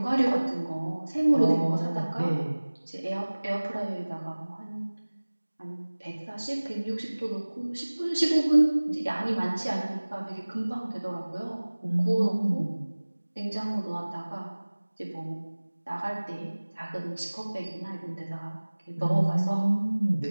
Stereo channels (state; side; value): inverted; both; correlation -1.00